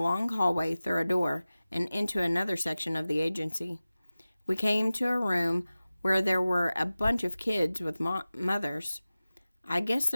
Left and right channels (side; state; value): both; inverted; correlation -0.97